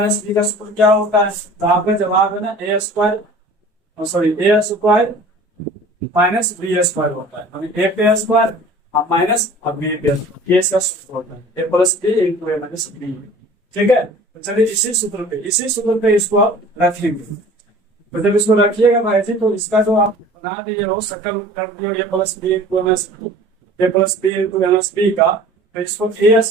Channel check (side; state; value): both; normal; correlation 0.45